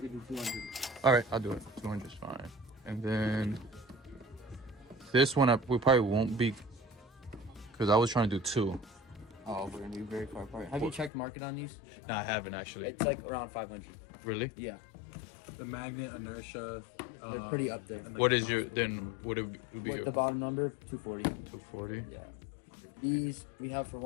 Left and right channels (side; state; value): right; drops out; at 11.1 s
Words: do 200. All right, I'll do it. 200 is fine. And then This one we probably won't be, because I was trying to do 2. Oh, we're gonna be very far apart. Have you checked market on these? No, I haven't actually. It's like around 500. Really? Yeah, The magnet inertia. they're pretty up there. and, like, What the is your mouse then? Would it be With the bottom number, 240. 240? Yeah. These we have for